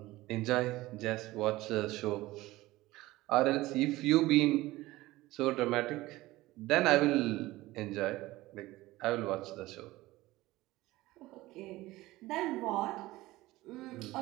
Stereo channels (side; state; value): left; quieter; 18.3 dB